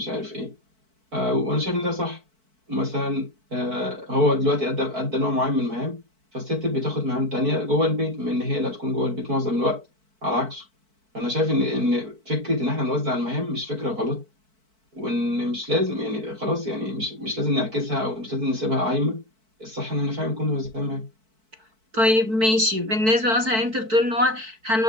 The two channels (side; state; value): left; late; 4.5 ms